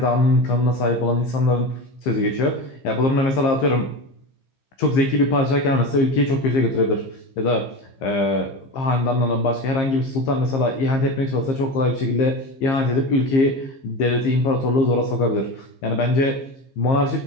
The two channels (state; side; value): late; right; 15 ms